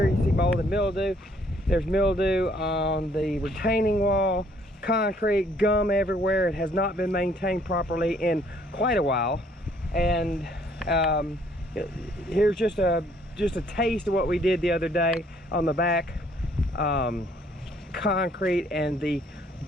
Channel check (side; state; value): both; normal; correlation 0.63